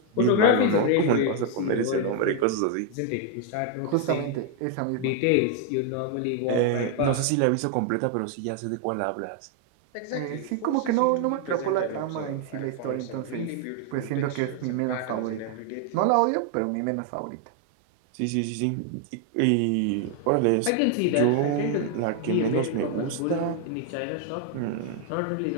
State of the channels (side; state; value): both; different; correlation 0.00